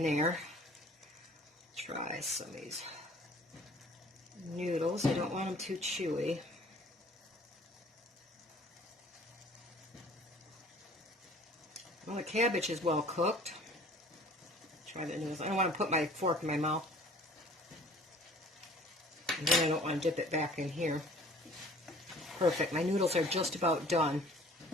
there. Try some of these noodles. I don't want them too chewy. Well, the cabbage is well cooked. Try the noodles. I don't want to put my fork in my mouth. And then I don't want to dip it back in here. Perfect. My noodles are just about done.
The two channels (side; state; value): both; normal; correlation 0.50